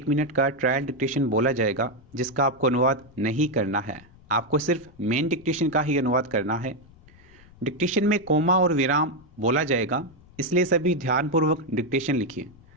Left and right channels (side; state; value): left; noise; rumble, 25 dB below the sound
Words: मिनट का ट्रायल डिक्टेशन बोला जाएगा, जिसका आपको अनुवाद नहीं करना है। आपको सिर्फ मेन डिक्टेशन का ही अनुवाद करना है। डिक्टेशन में कोमा और विराम बोला जाएगा, इसलिए सभी ध्यानपूर्वक डिक्टेशन लिखिए।